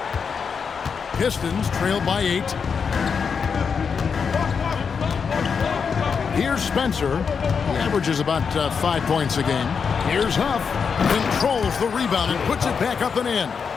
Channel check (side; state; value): right; quieter; 6.1 dB